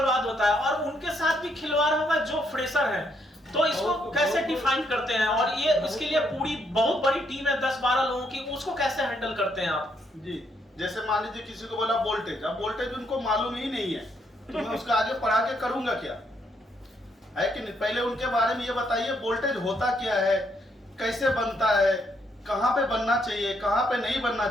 होता है और उनके साथ भी खिलवाड़ होगा जो फ्रेशर है। तो इसको कैसे डिफाइन करते हैं, और ये इसके लिए पूरी बहुत बड़ी टीम है 10-12 लोगों की, उसको कैसे हैंडल करते हैं आप? जी जैसे मान लीजिए किसी को बोला वोल्टेज, अब वोल्टेज उनको मालूम ही नहीं है तो मैं उसका आगे पढ़ा के करूंगा क्या, है कि नहीं? पहले उनके बारे में ये बताइए वोल्टेज होता क्या है, कैसे बनता है, कहाँ पे बनना चाहिए, कहाँ पे नहीं बनना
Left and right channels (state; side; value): normal; both; correlation 0.74